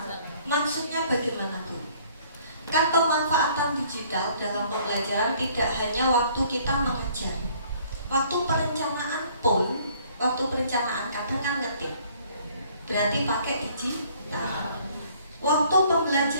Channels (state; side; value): inverted; both; correlation -0.59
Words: Maksudnya bagaimana Bu? Kan pemanfaatan digital dalam pembelajaran tidak hanya waktu kita mengajar. Waktu perencanaan pun, waktu perencanaan kadang kan ngetik. Berarti pakai digital. Waktu